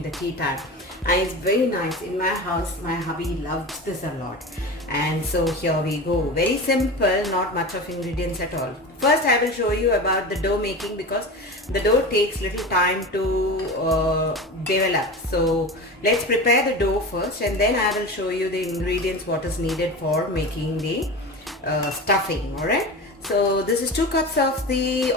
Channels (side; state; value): both; normal; correlation 0.29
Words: the tea time. And it's very nice. In my house, my hubby loves this a lot. And so here we go. Very simple, not much of ingredients at all. First, I will show you about the dough making because the dough takes little time to develop. So let's prepare the dough first, and then I will show you the ingredients what is needed for making the stuffing. Alright. So this is 2 cups of the